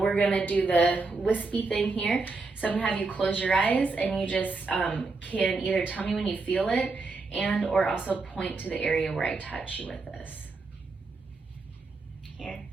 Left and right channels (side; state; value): left; quieter; 3.8 dB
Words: gonna do the wispy thing here. So I'm gonna have you close your eyes and you just can either tell me when you feel it and or also point to the area where I touch you with this. Here.